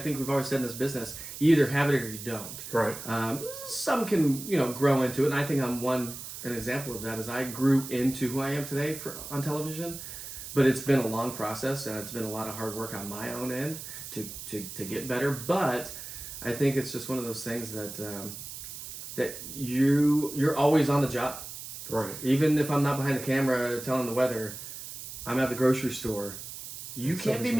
always said in this business, you either have it or you don't. Right. Some can, grow into it, and I think I'm an example of that is I grew into who I am today on television, but it's been a long process, and it's been a lot of hard work on my own end to get better. But I think it's just one of those things that you're always on the job. Right. Even if I'm not behind the camera telling the weather, I'm at the grocery store. You can't be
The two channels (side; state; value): right; noise; hiss, 10 dB below the sound